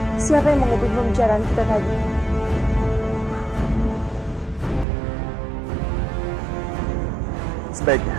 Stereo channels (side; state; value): left; drops out; at 4.9 s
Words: siapa yang mengubah pembicaraan kita tadi?